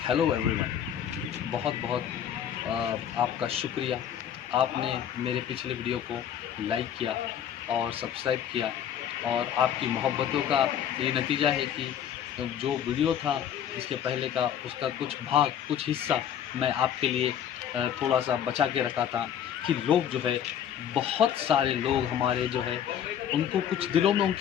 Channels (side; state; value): right; quieter; 9.6 dB